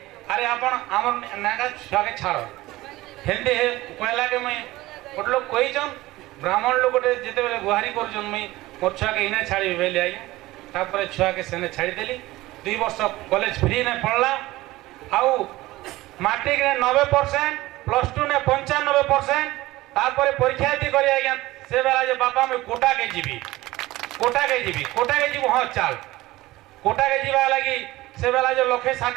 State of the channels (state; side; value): quieter; left; 18.3 dB